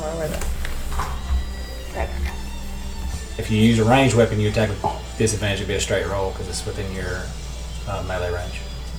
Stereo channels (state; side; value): identical; both; correlation 1.00